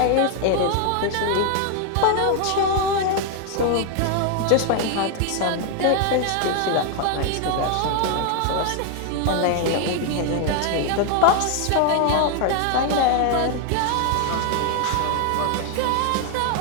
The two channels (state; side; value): different; both; correlation 0.00